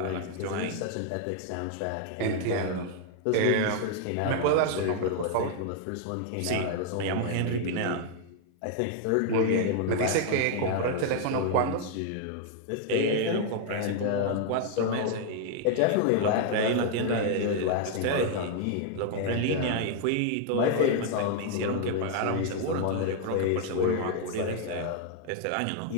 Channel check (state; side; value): different; both; correlation 0.00